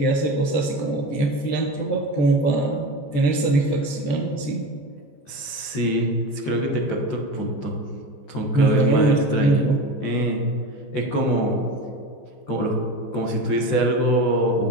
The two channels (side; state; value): right; late; 14 ms